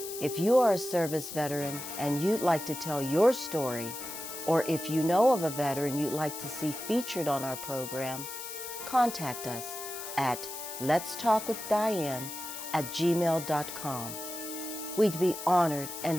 If you are a service veteran and you'd like to tell your story, or if you know of a veteran you'd like to see featured on our program, contact us at letstalkwithdiane@gmail.com. We'd be honored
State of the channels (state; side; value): noise; left; hiss, 9 dB below the sound